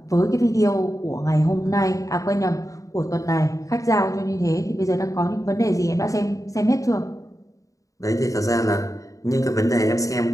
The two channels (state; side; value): late; right; 0.16 ms